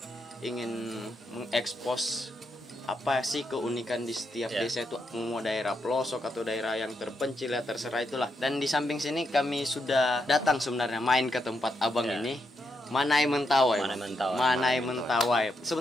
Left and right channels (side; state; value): both; normal; correlation 0.81